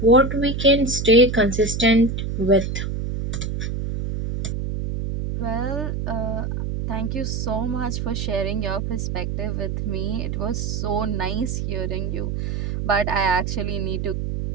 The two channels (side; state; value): right; noise; hum, 3 dB below the sound